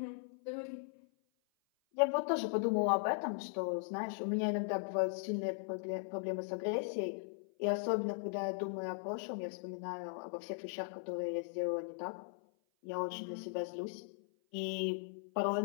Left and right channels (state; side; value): silent; right; 52 dB below the other